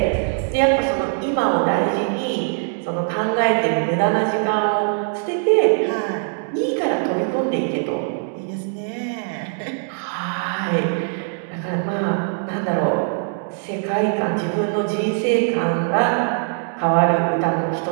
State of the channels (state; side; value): silent; left; 65 dB below the other